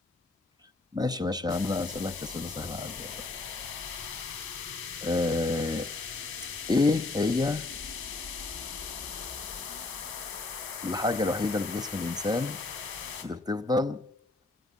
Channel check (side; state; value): right; quieter; 3.1 dB